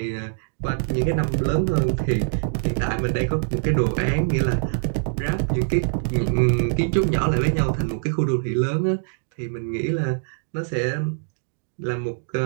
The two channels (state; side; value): silent; left; digital silence